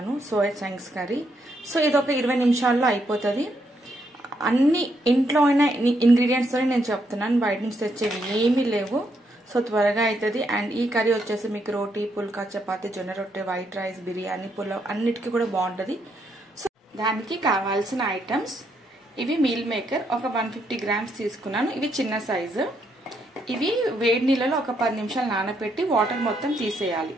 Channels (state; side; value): normal; both; correlation 0.76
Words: సోయా చంక్స్ కర్రీ. సో ఇది ఒక 20 నిమిషాల్లో అయిపోతుంది. అన్ని ఇంట్లో అయిన ఇంగ్రీడియంట్స్ తోనే నేను చెప్తున్నాను, బయట నుంచి తెచ్చేవి ఏమీ లేవు. సో త్వరగా అవుతుంది. అండ్ ఈ కర్రీ వచ్చేసి మీకు రోటీ, పుల్కా, చపాతీ, జొన్న రొట్టె, వైట్ రైస్, బిర్యానీ, పులావ్ అన్నిటికీ కూడా బాగుంటుంది. సో దానికి కావాల్సిన ఐటమ్స్ ఇవి. మీల్ మేకర్ ఒక 150 గ్రామ్స్ తీసుకున్నాను. ఇవి చిన్న సైజు. ఇవి వేడి నీళ్ళలో ఒక 10 నిమిషాలు నానబెట్టి వాటర్ మొత్తం తీసేయాలి.